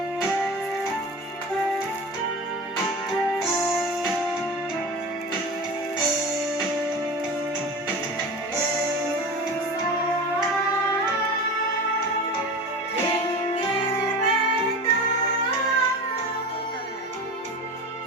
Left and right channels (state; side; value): normal; both; correlation 0.32